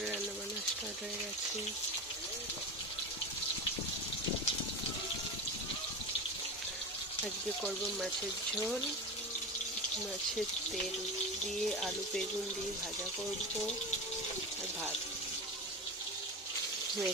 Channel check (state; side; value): normal; both; correlation 0.24